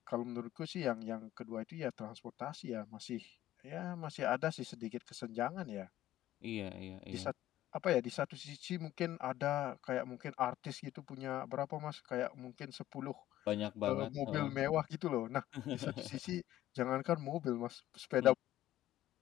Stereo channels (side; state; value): right; quieter; 13.9 dB